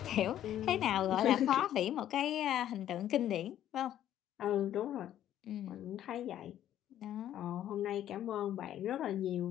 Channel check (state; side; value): quieter; right; 11.6 dB